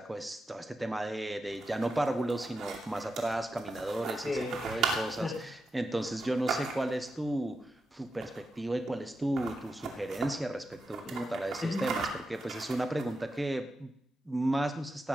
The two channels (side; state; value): both; normal; correlation 0.88